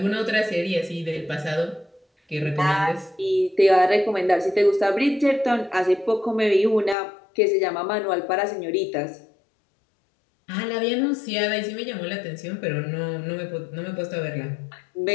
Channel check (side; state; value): right; drops out; at 7.0 s